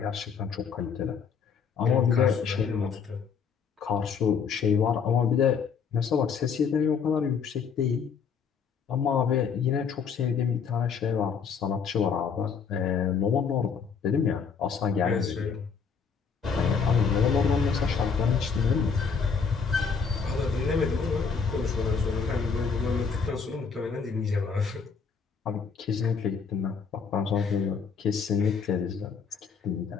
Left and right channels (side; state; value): right; quieter; 6.0 dB